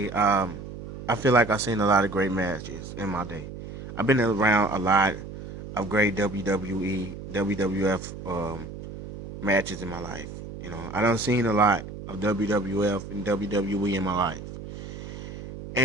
I feel like I've seen a lot of great matches in my day. I've been around a lot of great WWE, WWF matches in my life. I done seen a lot of WWF and WWE in my life,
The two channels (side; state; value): right; noise; hum, 11 dB below the sound